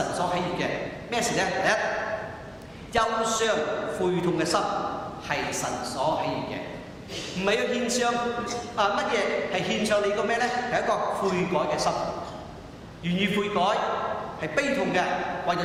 所喜悅嘅咩事咧？第一，憂傷悔痛嘅心係神所喜悅嘅，唔係要獻上乜嘢，係獻上你個咩咧？係一個悔改嘅心，願意悔改。係悲痛嘅，為咗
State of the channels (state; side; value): identical; both; correlation 1.00